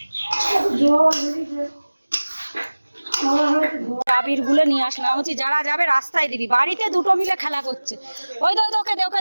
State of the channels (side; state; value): both; inverted; correlation -1.00